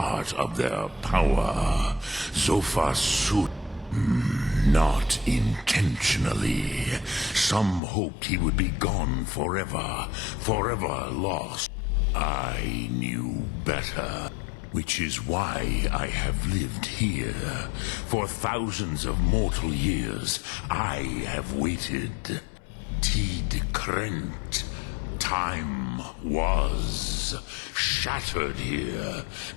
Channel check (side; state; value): right; drops out; at 7.8 s